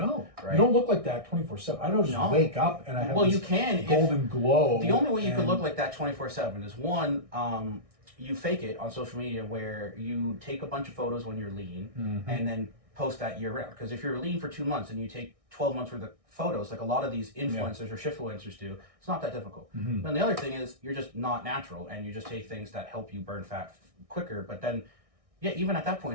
right? You don't look like that 24/7. I don't just wake up and I have you can golden glow. The only way you could look like that 24/7 is one, you fake it on social media where you take a bunch of photos when you're lean and then post that year round. Because if you're lean for 2 months and you take 12 months worth of photos, like a lot of these influencers or shiftfluencers do, it's not that difficult. And the other thing is you're just not natural and you just take things that help you burn fat quicker. But then, even at that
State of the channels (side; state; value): left; late; 1.6 ms